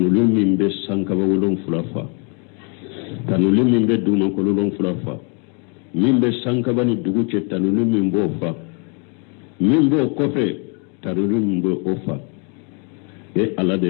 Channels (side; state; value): right; quieter; 37.1 dB